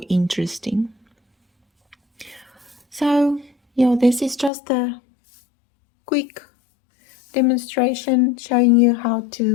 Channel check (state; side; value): drops out; right; at 4.5 s